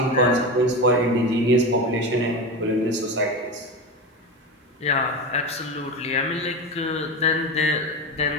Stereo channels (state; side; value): normal; both; correlation 0.22